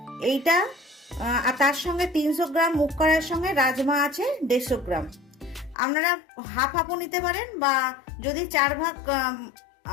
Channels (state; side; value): drops out; right; at 5.8 s